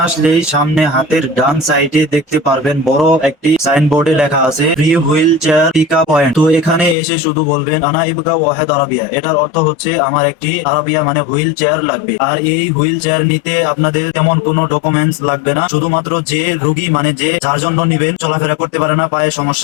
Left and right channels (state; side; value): drops out; right; at 7.0 s